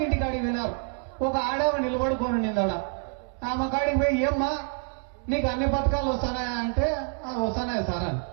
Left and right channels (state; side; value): quieter; left; 38.0 dB